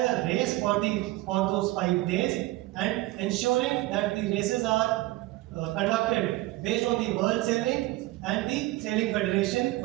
race for those 5 days and ensuring that the races are conducted based on the world sailing and the Sailing Federation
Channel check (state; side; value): quieter; left; 18.6 dB